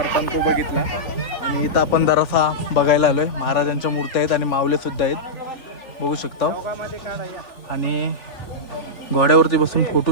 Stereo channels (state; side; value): late; right; 3.4 ms